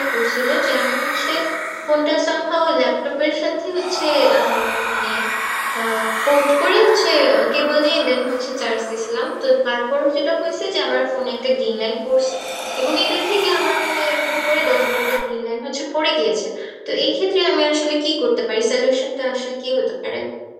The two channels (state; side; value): identical; both; correlation 1.00